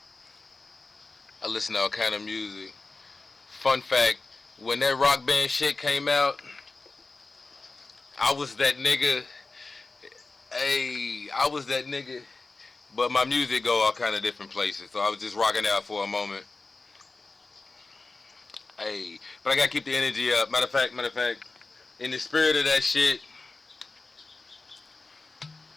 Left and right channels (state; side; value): quieter; right; 3.6 dB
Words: I listen to all kind of music. Fun fact: when that rock band shit came out, I was that nigga. Hey, I was that nigga. But my music go all kind of different places, so I was just rocking out for a moment. Hey, but I gotta keep the energy up. Matter of fact, in the spirit of that shit,